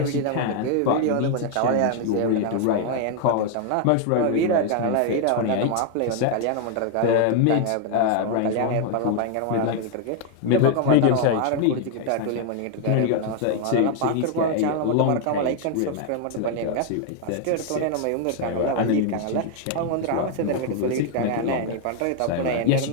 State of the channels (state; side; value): different; both; correlation 0.00